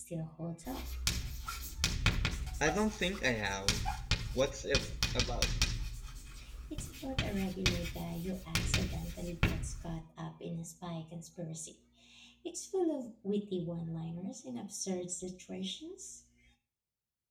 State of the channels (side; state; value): both; identical; correlation 1.00